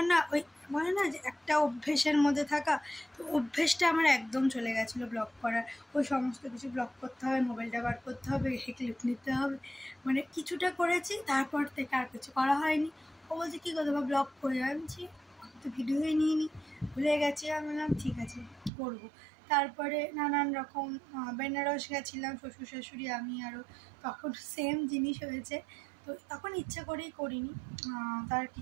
না ওই বলে না যে একটা অভ্যেসের মধ্যে থাকা, তো অভ্যেসটা আমার একদম চলে গেছিলো ব্লগ করার। ওই সমস্ত কিছু ব্লগ করতে হবে, মোবাইলটা বার করতে হবে, ক্লিপ নিতে হবে, মানে কিছুটা করেছি, তারপর থেকে আর কিছু করা হয়নি। ও বলছে কী করবো ব্লগ করে, আনছি তো ভিডিওই নিইনি, ভুলে গেছি। আমি বললাম ঠিক আছে করবো। তারপরে নানান রকম বেনারস গেছিলাম শ্বশুর শাশুড়ি আমি আরও, তখন সেম জিনিস হয়েছে। তো তখন ইচ্ছা করেই করিনি, তার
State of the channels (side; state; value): left; drops out; at 18.7 s